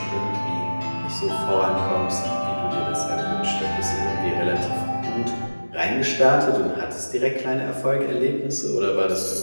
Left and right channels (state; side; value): inverted; both; correlation -1.00